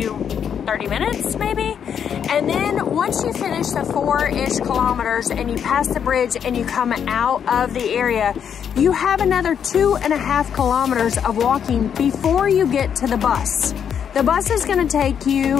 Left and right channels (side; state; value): right; quieter; 8.1 dB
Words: 30 minutes maybe. And then once you finish the 4-ish kilometers and you pass the bridge and you come out of the area, you have another 2.5 kilometers of walking before you get to the bus. The bus is going to take